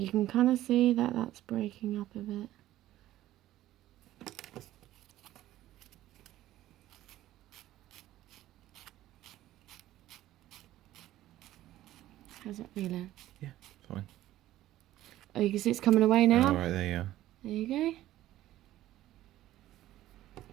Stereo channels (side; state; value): left; quieter; 14.4 dB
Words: can kind of see that that's breaking up a bit. How's that feeling? Yeah, fine. Oh, you can see it's coming away now? Oh, right, there you are. There you go.